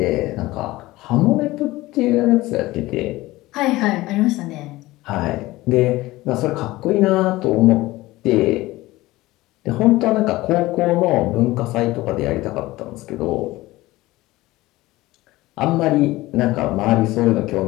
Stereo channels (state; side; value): quieter; right; 18.6 dB